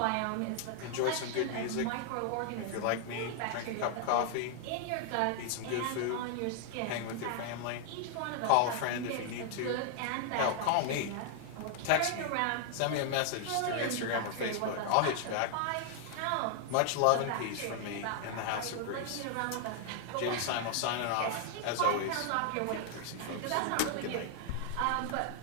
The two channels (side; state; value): both; different; correlation 0.00